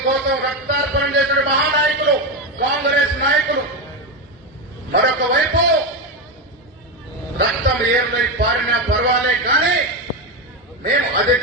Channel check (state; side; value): normal; both; correlation 0.12